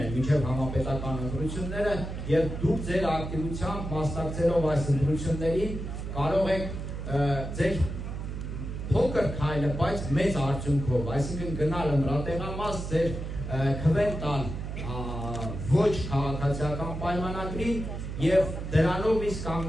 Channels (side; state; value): right; noise; hum, 6 dB below the sound